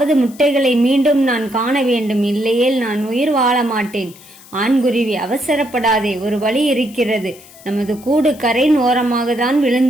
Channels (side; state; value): left; noise; hiss, 22 dB below the sound